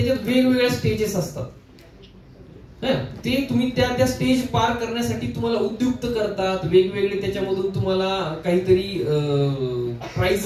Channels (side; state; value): both; identical; correlation 1.00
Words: वेगवेगळ्या स्टेजेस असतात. ते तुम्ही त्या स्टेज पार करण्यासाठी तुम्हाला उद्युक्त करतात. वेगवेगळे त्याच्यामधून तुम्हाला काहीतरी